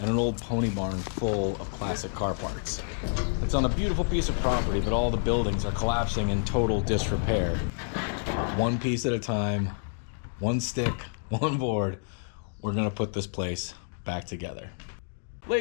and an old pony barn full of classic car parts. It's on a beautiful piece of property, but all the buildings are collapsing in total disrepair. One piece at a time, one stick, one board, we're gonna put this place back together.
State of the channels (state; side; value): silent; right; digital silence